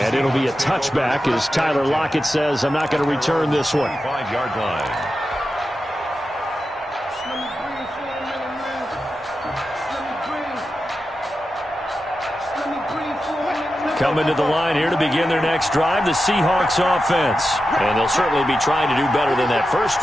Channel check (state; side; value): normal; both; correlation 0.91